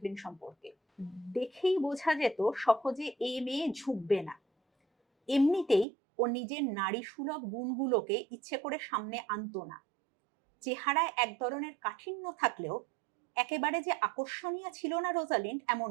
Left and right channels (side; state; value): left; drops out; at 5.9 s